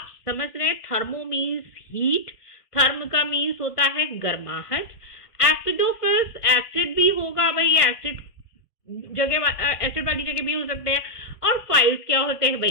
समझ रहे हैं, थर्मो मीन्स हीट, थर्म का मीन्स होता है गर्माहट, एसिडोफिल्स एसिड भी होगा भाई, एसिड वाली जगह भी हो सकते हैं, और फाइल्स क्या होते हैं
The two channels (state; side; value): late; right; 1.5 ms